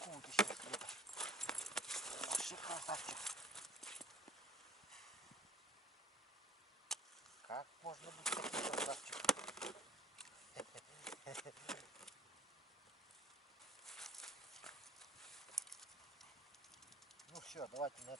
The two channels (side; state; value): both; normal; correlation 0.51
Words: ты сейчас где-то. Вообще красавчик. Как можно быть таким красавчиком? Ну все, давайте на